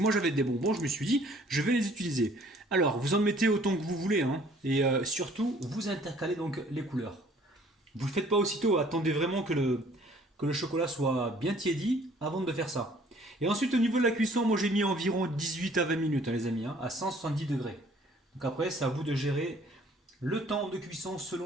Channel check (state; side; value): normal; both; correlation 0.57